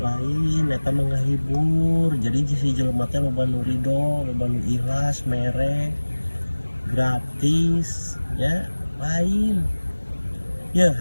eta mah ngahibur. Jadi si jelema teh loba nu ridho, loba nu ikhlas, mere, gratis, ya lain. Ya,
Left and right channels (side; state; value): both; inverted; correlation -1.00